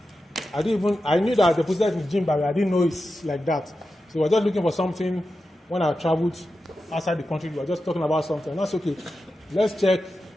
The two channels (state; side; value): normal; both; correlation 0.91